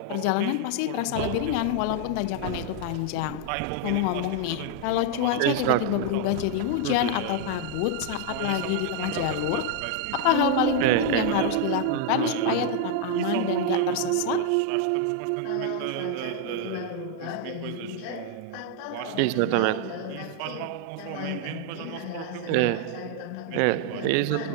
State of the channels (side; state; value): both; different; correlation 0.00